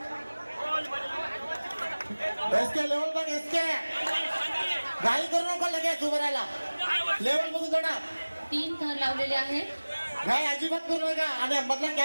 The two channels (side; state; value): both; inverted; correlation -1.00